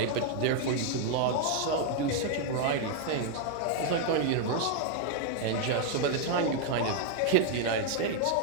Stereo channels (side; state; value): both; different; correlation 0.00